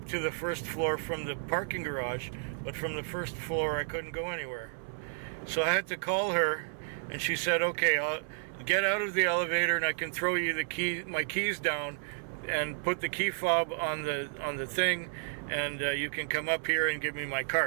to the first floor from the parking garage, but from the first floor I couldn't go anywhere. So I had to call her, and she said, okay, I'll get out of the elevator and I can throw you my keys down and put the key fob on the thing, and you can come up here and give me my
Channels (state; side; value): silent; left; 55 dB below the other